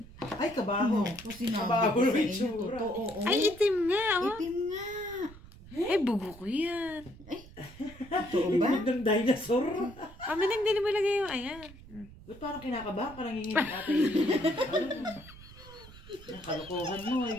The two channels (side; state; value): right; noise; rumble, 19 dB below the sound